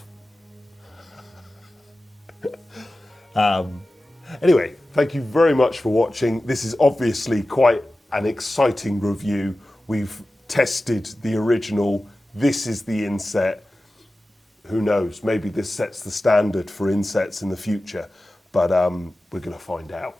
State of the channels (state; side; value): normal; both; correlation 0.95